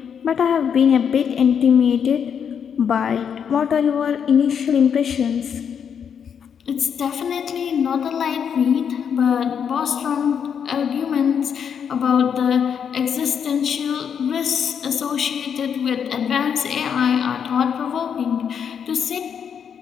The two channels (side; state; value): right; quieter; 7.6 dB